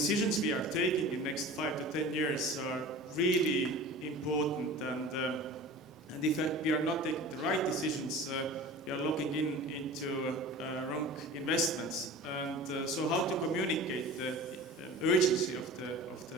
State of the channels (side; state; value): both; normal; correlation 0.38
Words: we are taking in the next 5 to 10 years are really important, and if we are not taking the right decisions, we are looking into wrong investments. And so how to communicate the urgency of